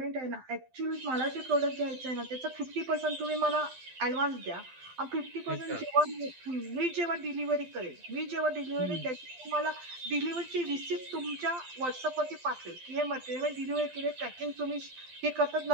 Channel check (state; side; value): late; left; 12 ms